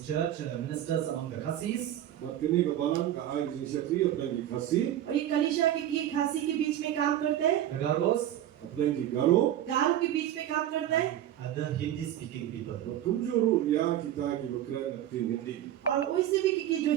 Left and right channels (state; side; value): quieter; left; 12.0 dB